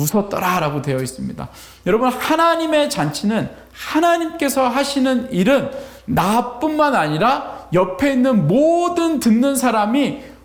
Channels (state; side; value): identical; both; correlation 1.00